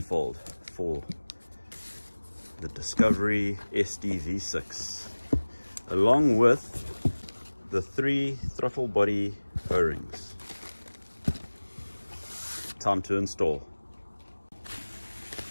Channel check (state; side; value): inverted; both; correlation -1.00